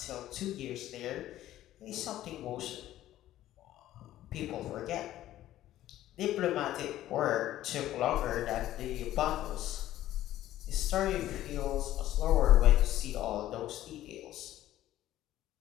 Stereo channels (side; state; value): right; quieter; 13.8 dB